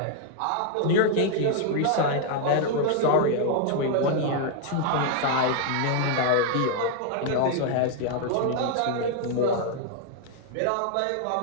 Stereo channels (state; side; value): different; both; correlation 0.00